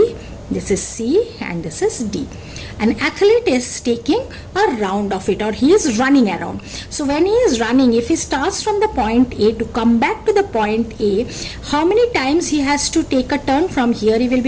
this is C and this is D. An athlete is taking a round of it, or he is running around. So when he is running, if he starts from the point A to come back to the point A, how many times he has to take a turn? From here he will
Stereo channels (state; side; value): identical; both; correlation 1.00